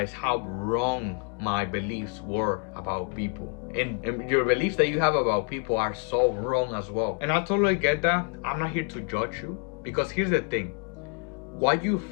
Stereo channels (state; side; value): quieter; right; 38.3 dB